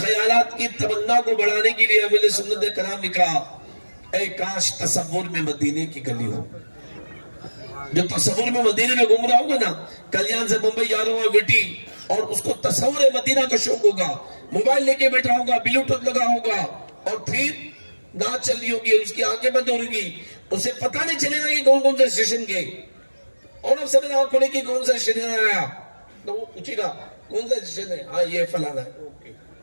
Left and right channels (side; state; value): both; inverted; correlation -1.00